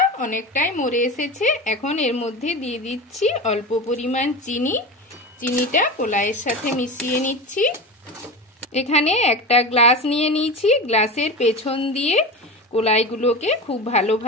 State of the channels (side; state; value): both; normal; correlation 0.26